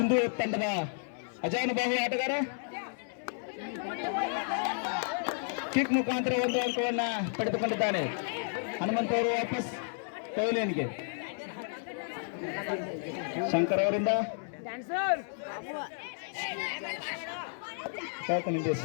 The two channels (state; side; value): silent; right; 56 dB below the other